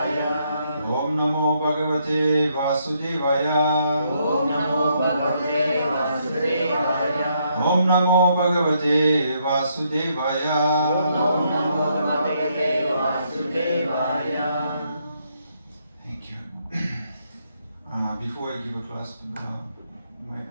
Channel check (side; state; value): both; inverted; correlation -0.74